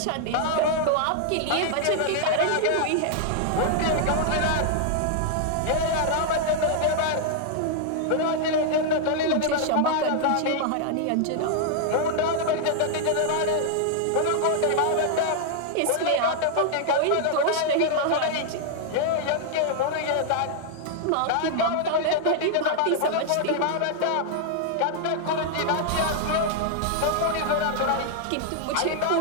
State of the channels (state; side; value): different; both; correlation -0.01